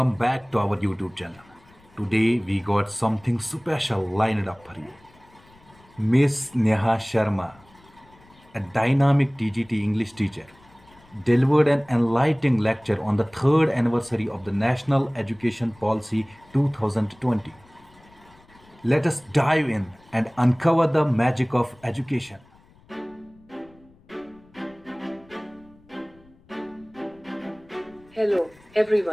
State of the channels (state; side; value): noise; left; rumble, 28 dB below the sound